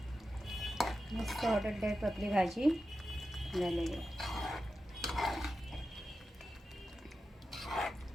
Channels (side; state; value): both; normal; correlation 0.91